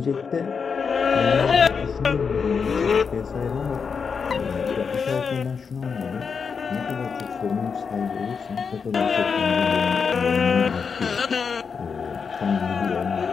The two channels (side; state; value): right; quieter; 5.8 dB